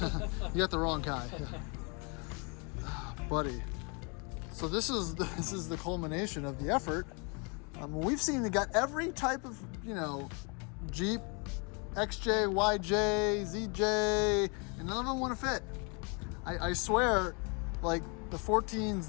You got the wrong guy. Ah, buddy. So this is the culmination of the effort. We've seen they got every type of, you know, Jeep, XJ, YJ, ZJ, and none of them want to fit. I swear, like the 14s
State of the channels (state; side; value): quieter; right; 33.8 dB